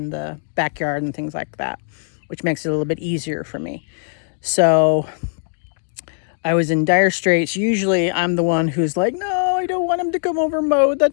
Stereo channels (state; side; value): silent; right; digital silence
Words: backyard and things like that, which makes it a little bit easier for me. So I was in dire straits. Usually I'm the one who's like, no, I don't want him to come over and mow. The